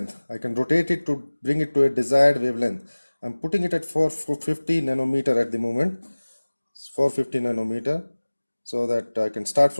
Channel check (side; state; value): both; inverted; correlation -1.00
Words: I can rotate it to bring it to a desired wavelength. I'm putting it at 450 nanometer at the moment. It's 450 nanometer, so that I can start